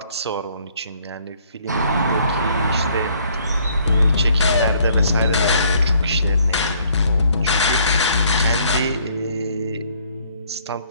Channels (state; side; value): inverted; both; correlation -0.63